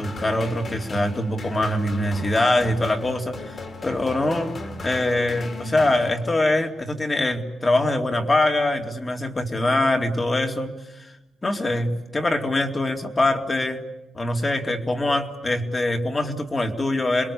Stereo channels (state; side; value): normal; both; correlation 0.92